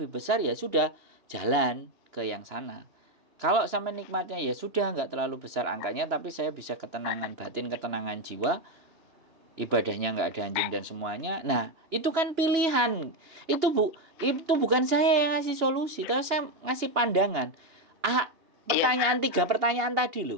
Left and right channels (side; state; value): left; late; 2.9 ms